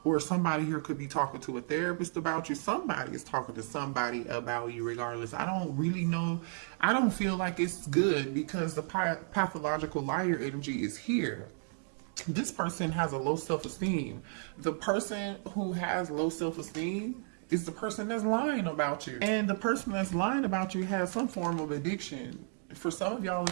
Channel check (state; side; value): silent; left; 56 dB below the other